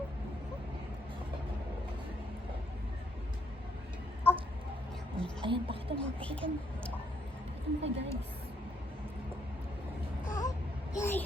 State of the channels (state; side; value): normal; both; correlation 0.73